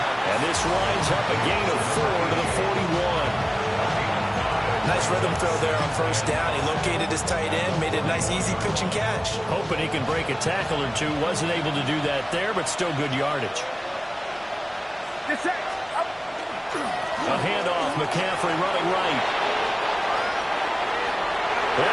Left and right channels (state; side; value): identical; both; correlation 1.00